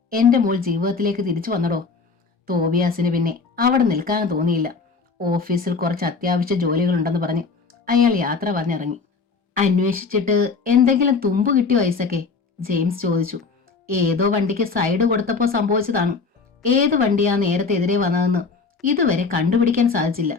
എന്റെ മോൾ ജീവിതത്തിലേക്ക് തിരിച്ചു വന്നടോ. തോബിയാസിന് പിന്നെ അവിടെ നിൽക്കാൻ തോന്നിയില്ല. ഓഫീസിൽ കുറച്ച് അത്യാവശ്യ ജോലികളുണ്ടെന്ന് പറഞ്ഞ് അയാൾ യാത്ര പറഞ്ഞിറങ്ങി. അന്വേഷിച്ചിട്ട് എന്തെങ്കിലും തുമ്പ് കിട്ടിയോ ഐസക്കെ? ജെയിംസ് ചോദിച്ചു. ഏതോ വണ്ടിക്ക് സൈഡ് കൊടുത്തപ്പോ സംഭവിച്ചതാണ്. ഏത് വണ്ടിയാ നേരത്തെ എതിരെ വന്നതെന്ന് ഇതുവരെ കണ്ടുപിടിക്കാൻ സാധിച്ചില്ല.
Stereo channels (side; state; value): right; quieter; 4.7 dB